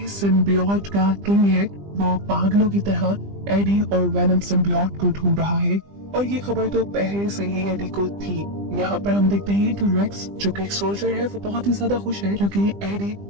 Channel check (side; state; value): left; late; 20 ms